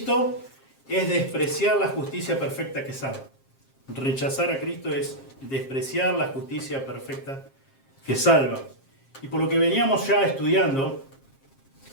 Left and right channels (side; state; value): right; late; 7.5 ms